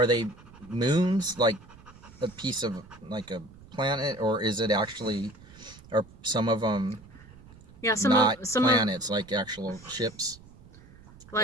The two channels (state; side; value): noise; right; rumble, 21 dB below the sound